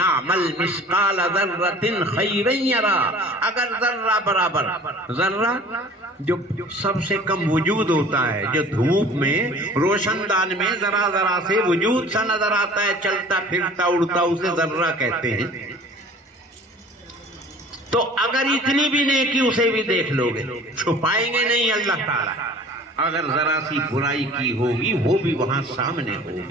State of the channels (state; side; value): normal; both; correlation 0.47